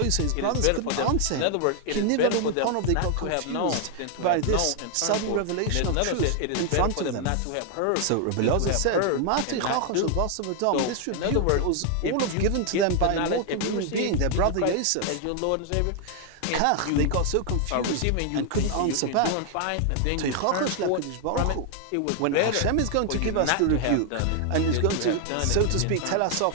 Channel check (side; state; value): both; different; correlation 0.00